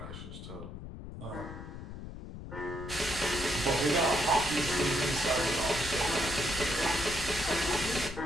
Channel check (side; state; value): left; noise; rumble, 10 dB below the sound